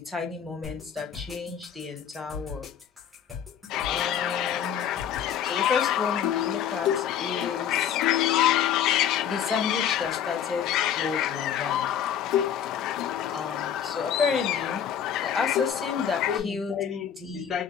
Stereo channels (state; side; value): quieter; right; 9.0 dB